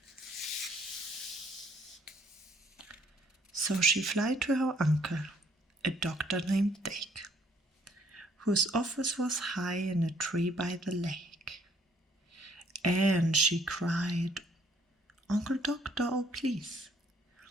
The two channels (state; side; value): normal; both; correlation 0.64